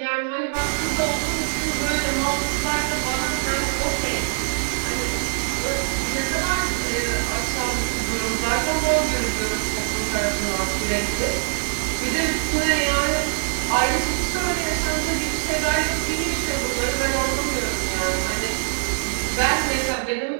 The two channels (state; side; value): silent; left; 57 dB below the other